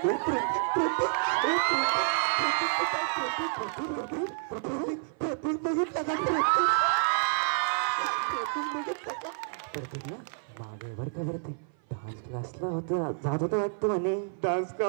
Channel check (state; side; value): silent; left; 55 dB below the other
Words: हे प्रतीक बघितलं का मागेवर का वरती डान्स क्लासला होतं जात होतं वाटतं म्हणे डान्स